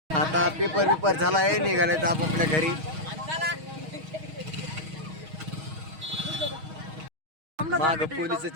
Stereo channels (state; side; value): late; left; 6.3 ms